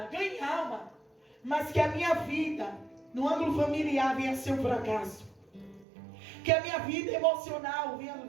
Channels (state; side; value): drops out; left; at 5.9 s